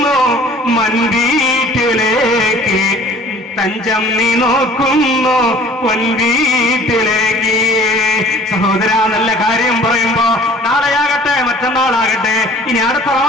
മൻവീട്ടിലേക്ക്, തഞ്ചം നീ നോക്കുന്നു പൊൻവീട്ടിലേക്ക്. സഹോദര, നല്ല കാര്യം പറയുമ്പോ നാളെയാകട്ടെ, മറ്റന്നാളാകട്ടെ, ഇനി അടുത്ത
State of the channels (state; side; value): normal; both; correlation 0.50